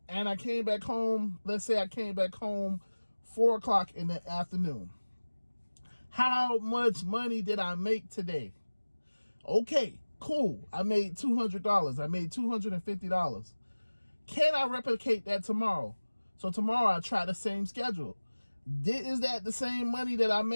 and I came back home. Let's say I came back home 4 o'clock in the afternoon. How much money did I make today? Okay, cool. I made $200. I made $250. Can I replicate that tomorrow? So tomorrow I try the same schedule. Is that the same money that I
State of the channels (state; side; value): inverted; both; correlation -1.00